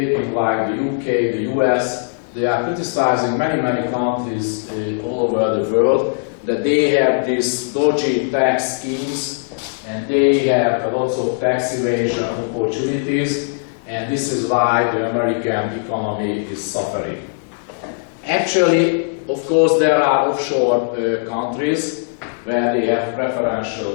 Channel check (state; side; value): silent; right; digital silence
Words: like the UK, the US. They are criticizing many countries all over the world that they have these dodgy tax schemes and they have lots of tax evasion opportunities, and this is why the American economy is suffering. Actually, of course, there are offshore countries where they have